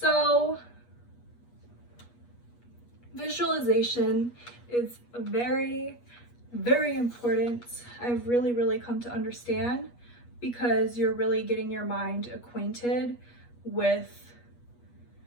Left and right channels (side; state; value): right; late; 8.3 ms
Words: visualization is very, very important. I've really come to understand, because you're really getting your mind acquainted with